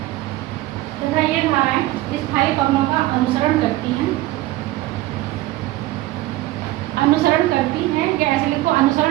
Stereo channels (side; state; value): left; quieter; 17.2 dB